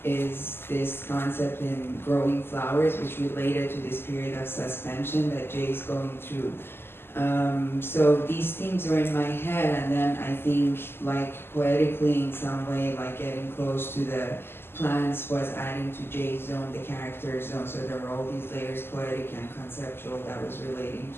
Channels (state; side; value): late; right; 0.11 ms